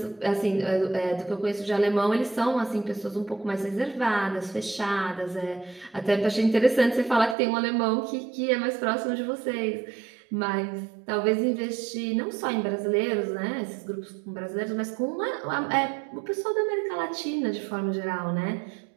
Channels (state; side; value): drops out; left; at 7.4 s